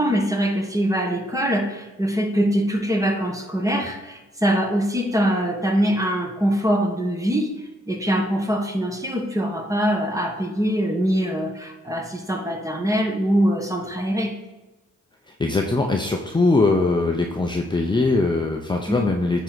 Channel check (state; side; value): normal; both; correlation 0.75